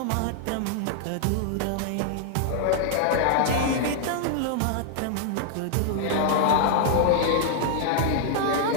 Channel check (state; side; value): different; both; correlation -0.01